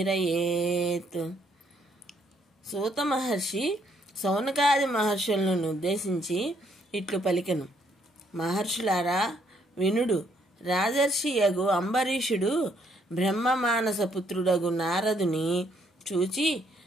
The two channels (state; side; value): normal; both; correlation 0.69